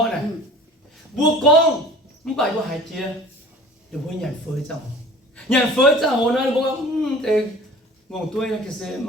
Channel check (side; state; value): both; normal; correlation 0.45